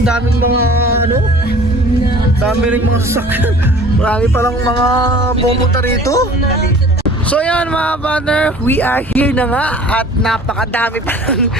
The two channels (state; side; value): normal; both; correlation 0.47